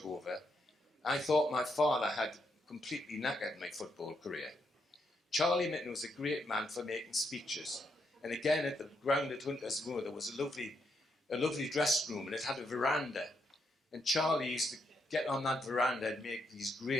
over, I thought my father had completely knackered my football career. Charlie Mitten was a great man for making speeches. And again, at the ground at Hunters Moor, there was a lovely dressing room, and it had a veranda. And Charlie used to get on that veranda and make these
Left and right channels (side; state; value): both; normal; correlation 0.79